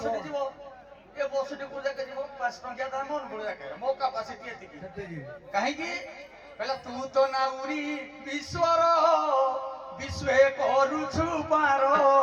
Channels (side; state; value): both; identical; correlation 1.00